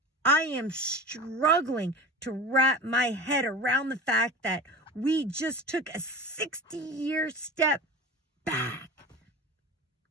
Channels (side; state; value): both; normal; correlation 0.31